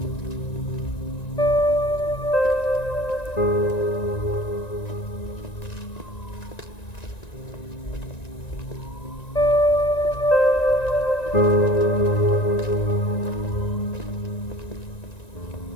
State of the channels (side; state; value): right; late; 1.9 ms